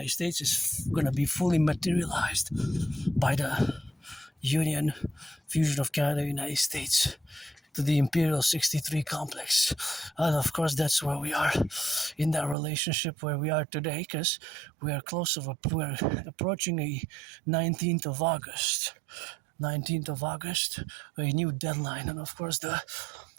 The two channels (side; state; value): left; drops out; at 12.6 s